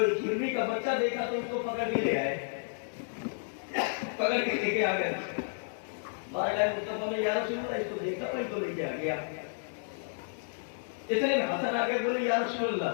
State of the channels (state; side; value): silent; right; digital silence